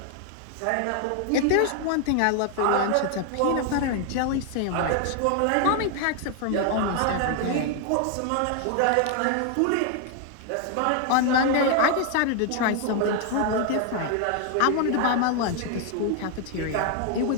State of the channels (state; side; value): different; both; correlation 0.00